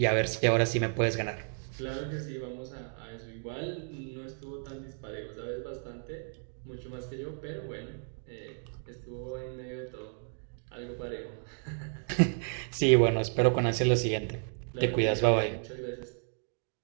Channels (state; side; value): silent; left; 56 dB below the other